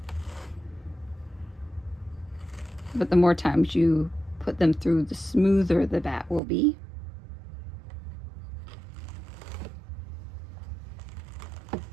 But the more times you put them through, the smoother the batt will be.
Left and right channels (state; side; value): drops out; left; at 6.4 s